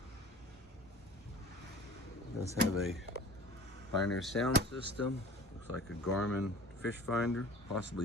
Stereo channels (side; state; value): both; normal; correlation 0.42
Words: Does have a Pioneer sound system. Looks like a Garmin fish finder,